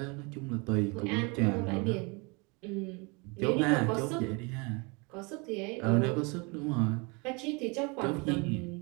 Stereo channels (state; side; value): quieter; left; 29.8 dB